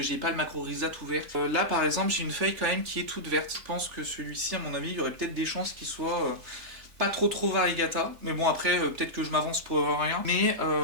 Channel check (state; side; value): late; left; 3.4 ms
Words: j'ai pas le Macrorhiza tout vert. Là par exemple, j'ai une feuille quand même qui est toute verte. Je pense que celui-ci, à mon avis, il y aurait peut-être des chances qu'il soit pas trop variegata, mais bon après peut-être que je m'avance pour rien, mais